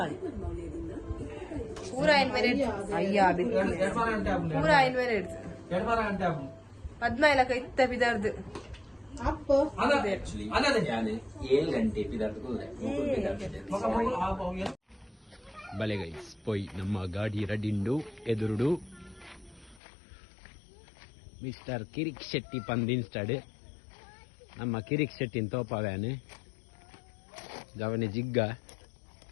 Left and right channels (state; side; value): drops out; right; at 19.8 s